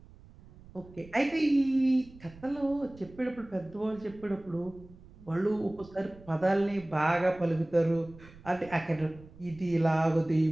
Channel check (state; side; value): noise; right; rumble, 22 dB below the sound